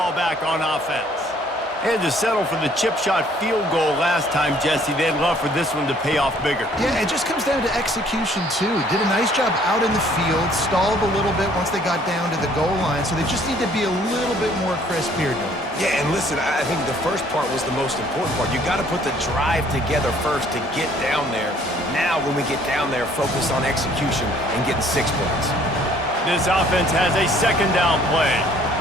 back on offense. They had to settle for the chip shot field goal last time, Jesse. They'd love for this one to pay off bigger. Yeah, it just comes down to execution, too. Did a nice job out in the field, stalled a little bit once they got down to the goal line, so they just need to be a little bit more crisp here. Yeah, and listen, I think the first part was the most important part. You got to put the drive together first to get down there. Now, when we get down there, focus on execution and getting 6 points. This offense has a 2nd down play.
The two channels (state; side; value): normal; both; correlation 0.60